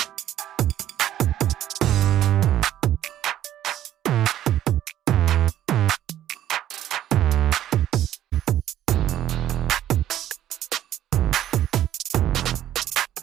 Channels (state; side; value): quieter; left; 12.1 dB